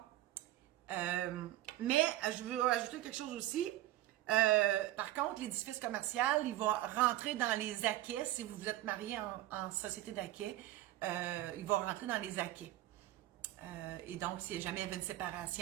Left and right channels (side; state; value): left; quieter; 15.0 dB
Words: Mais je veux ajouter quelque chose aussi. Par contre, l'édifice commercial, il va rentrer dans les acquets. Si vous vous êtes marié en société d'acquets, il va rentrer dans les acquets. Et donc, si jamais il y avait une